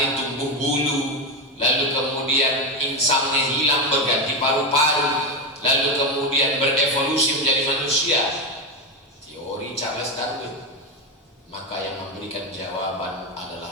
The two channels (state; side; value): normal; both; correlation 0.13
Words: tumbuh bulu, lalu kemudian insangnya hilang berganti paru-paru, lalu kemudian berevolusi menjadi manusia. Teori Charles Darwin. Maka yang memberikan jawaban